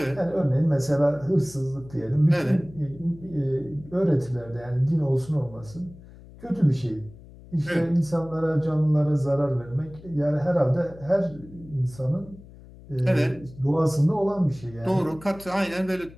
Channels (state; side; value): noise; left; hum, 20 dB below the sound